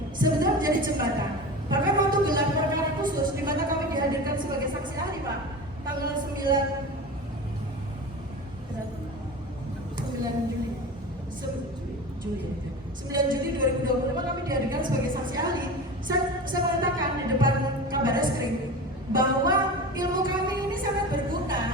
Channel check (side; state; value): both; normal; correlation 0.30